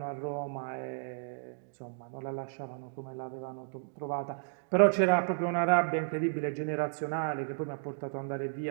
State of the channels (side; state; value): left; silent; digital silence